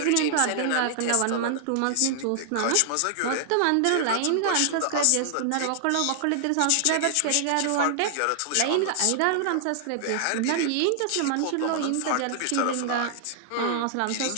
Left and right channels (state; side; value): different; both; correlation 0.00